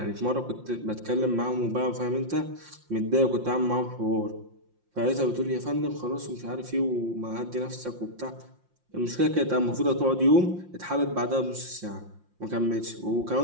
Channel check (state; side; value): late; left; 5.7 ms